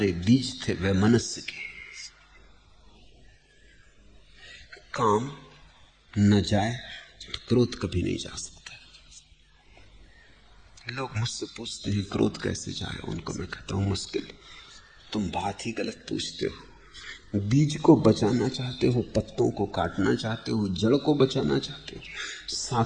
बीज थे वैमनस्य के। काम न जाए तो क्रोध कभी नहीं जा सकता। लोग मुझसे पूछते हैं क्रोध कैसे जाए, उनको मैं कहता हूं मुश्किल। तुम बात ही गलत पूछते हो। बीज को बचाना चाहते हो, पत्तों को काटना चाहते हो, जड़ को बचाना चाहते हो,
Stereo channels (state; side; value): identical; both; correlation 1.00